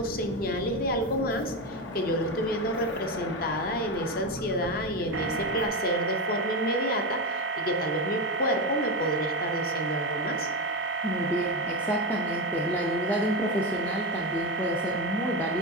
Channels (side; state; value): both; normal; correlation 0.14